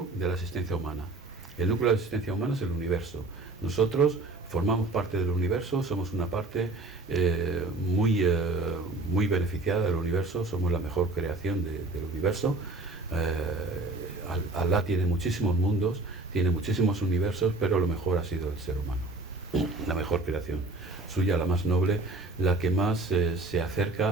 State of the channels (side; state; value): left; quieter; 3.1 dB